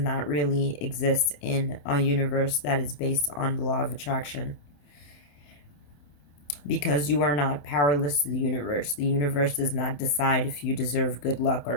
really exist in a universe that is based on the law of attraction, because you are not powerless to the universe. The universe does not decide if you deserve good luck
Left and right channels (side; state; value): right; late; 27 ms